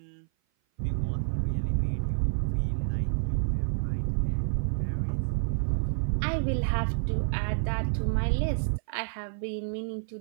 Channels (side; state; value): left; silent; 56 dB below the other